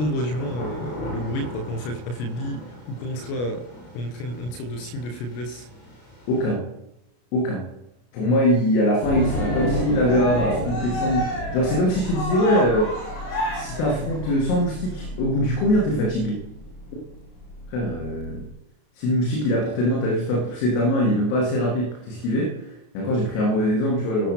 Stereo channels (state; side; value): late; right; 33 ms